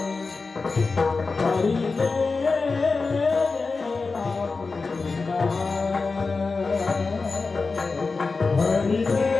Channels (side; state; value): right; quieter; 4.2 dB